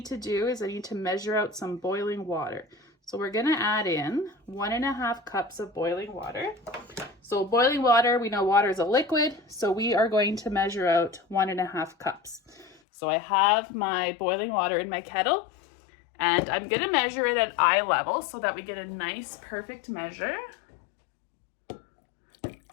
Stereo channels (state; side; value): drops out; right; at 12.8 s